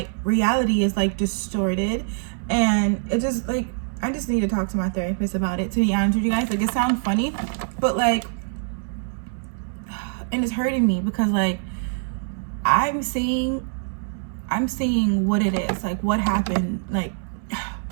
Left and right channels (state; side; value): silent; left; 63 dB below the other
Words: reality is like distorted, and it just like, I just need to talk to my therapist about it, to be honest with you guys. Like, it sounds funny, but like, and it's hurting me, because like I'm seeing what it is, like what happened. Like,